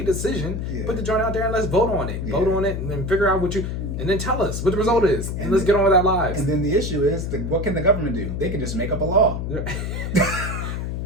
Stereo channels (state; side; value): noise; left; hum, 3 dB below the sound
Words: decision. Yeah. Put the joint out there and let's vote on it. Yeah. Vote on it and then figure out and then tell us what the result is. And let's get on with our lives. And then the issue is, what can the government do? They can just make up a law.